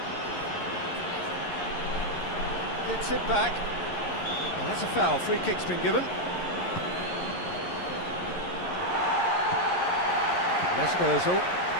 Gets it back. And that's a foul. Free kick's been given. Mesut Ozil.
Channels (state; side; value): late; right; 11 ms